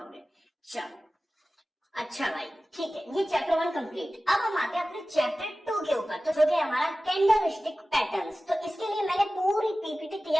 चलो अच्छा भाई, ठीक है, ये चैप्टर 1 कंप्लीट। अब हम आते हैं अपने चैप्टर 2 के ऊपर, तो जो कि हमारा कैंडलस्टिक पैटर्न्स। तो इसके लिए मैंने पूरी पीपीटी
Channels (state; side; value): normal; both; correlation 0.96